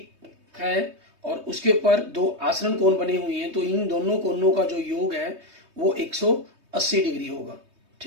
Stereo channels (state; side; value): late; left; 3.2 ms